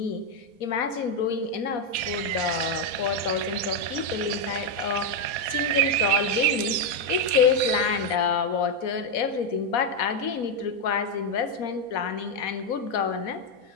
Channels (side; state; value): right; late; 4.2 ms